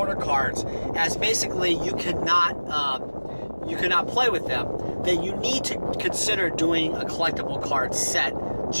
cards as basically you cannot play with them, then you need to consider doing a collectible card set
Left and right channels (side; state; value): both; inverted; correlation -1.00